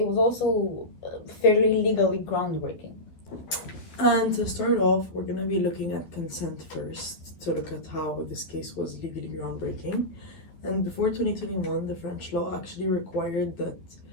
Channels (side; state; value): right; late; 12 ms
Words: was also fairly legally groundbreaking. And to start off, we're going to be looking at consent first, to look at how this case was legally groundbreaking. And before 2021, the French law actually required that